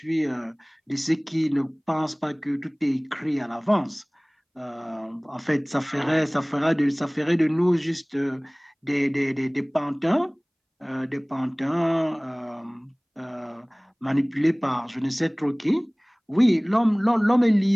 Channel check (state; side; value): identical; both; correlation 1.00